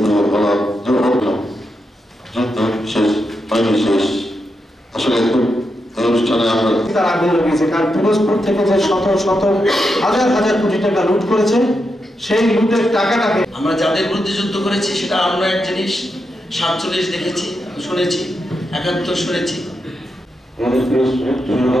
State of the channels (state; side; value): normal; both; correlation 0.85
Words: বলা শেষ হয়নি শেষ আসলে অনুষ্ঠানে আমরা তার আগুন লাগিয়েছে কারণ পিরোজপুর থেকে যে শত শত হাজার হাজার কোটি টাকা লুট করেছে সেই লুটের টাকাটাকে আমরা যাদের বিরুদ্ধে যুদ্ধ করেছি সেটা আমরা এক জিনিস 47 দেখেছি শুনেছি 71 শুনেছি